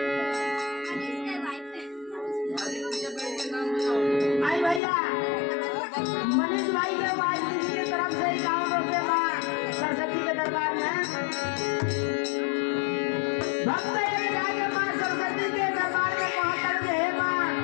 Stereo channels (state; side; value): drops out; right; at 4.8 s